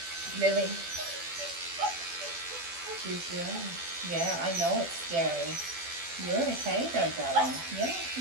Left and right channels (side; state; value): left; late; 12 ms